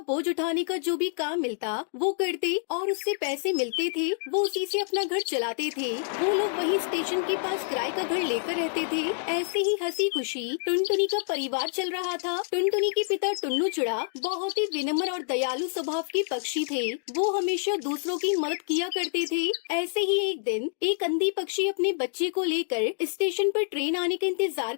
उठाने का जो भी काम मिलता वो करते और उससे पैसे मिलते थे, वो उसी से अपना घर चलाते थे। वो लोग वही स्टेशन के पास किराए का घर लेकर रहते थे। ऐसे ही हंसी खुशी टुनटुनी का परिवार चल रहा था। टुनटुनी के पिता टुन्नू चिड़ा बहुत ही विनम्र और दयालु स्वभाव के पक्षी थे। वो हमेशा दूसरों की मदद किया करते थे। ऐसे ही एक दिन एक अंधी पक्षी अपने बच्चे को लेकर स्टेशन पर ट्रेन आने का इंतजार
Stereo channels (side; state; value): right; silent; digital silence